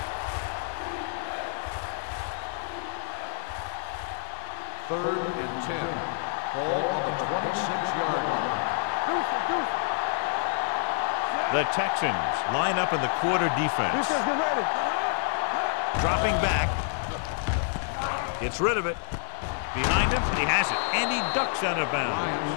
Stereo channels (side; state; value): right; silent; digital silence